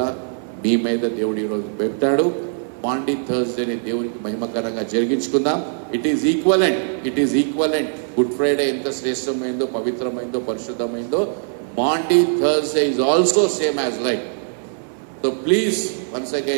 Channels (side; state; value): left; silent; 61 dB below the other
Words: మీ మీద దేవుడు ఈరోజు పెట్టాడు. మాండీ థర్స్డేని దేవునికి మహిమకరంగా జరిగించుకుందాం. It is equivalent. Good Friday ఎంత శ్రేష్టమైందో, పవిత్రమైందో, పరిశుద్ధమైందో, Maundy Thursday is also same as like. So please once